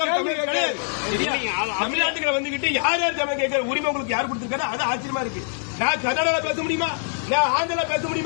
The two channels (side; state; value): right; silent; digital silence